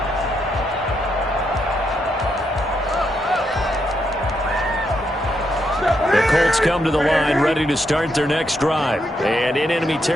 The Colts come to the line ready to start their next drive. And in enemy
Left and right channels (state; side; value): normal; both; correlation 0.79